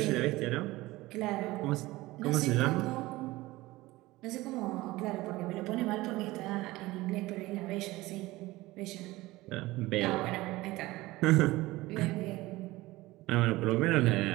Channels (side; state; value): left; quieter; 19.2 dB